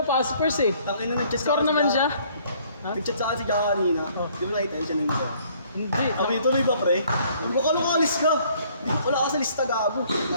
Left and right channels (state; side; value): inverted; both; correlation -0.61